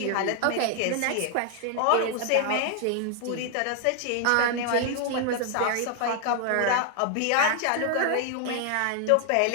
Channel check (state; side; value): different; both; correlation 0.00